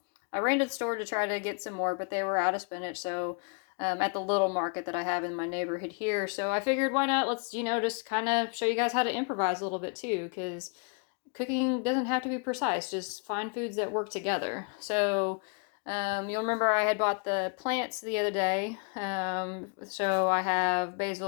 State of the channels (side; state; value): right; quieter; 37.8 dB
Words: I ran to the store to try to get some more, but they were out of spinach. So at the little market that I have in my neighborhood here. So I figured, why not? Let's, just kind of show you guys how to improvise a little bit too, because cooking doesn't have to be precise. Just find foods that work together. So you'll remember I had bought the plants the other day. So I have